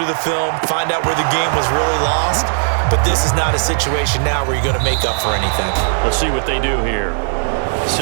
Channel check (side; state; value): left; silent; digital silence